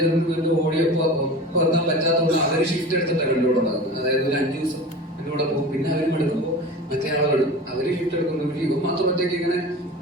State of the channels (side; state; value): both; normal; correlation 0.34